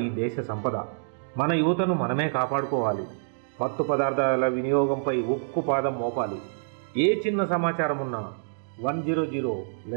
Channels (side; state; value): left; silent; digital silence